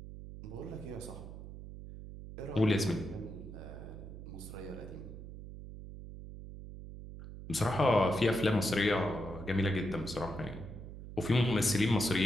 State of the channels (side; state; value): right; noise; hum, 12 dB below the sound